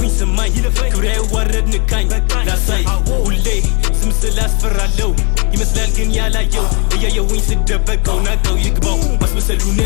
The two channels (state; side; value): quieter; right; 34.4 dB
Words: ስማኝ ክብሬ አይዋረድ ንካኝ ላሳይ ሁሌ ስም ስላስፈራለው ይመስላል ግን ያላየው እያየውኝ ስደበቀው ናቀው ይግባው